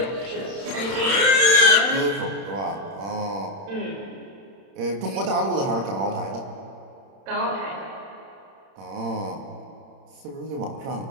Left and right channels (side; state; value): left; late; 31 ms